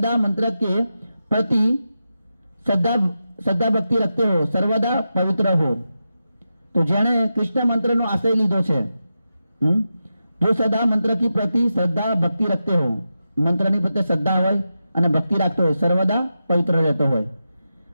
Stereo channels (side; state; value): both; inverted; correlation -0.89